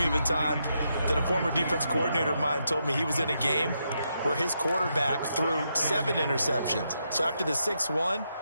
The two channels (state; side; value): inverted; both; correlation -0.82